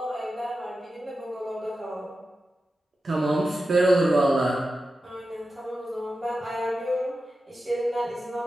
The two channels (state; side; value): normal; both; correlation 0.92